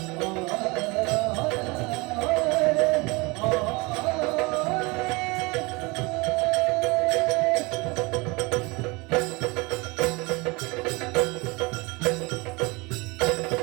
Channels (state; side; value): quieter; left; 25.8 dB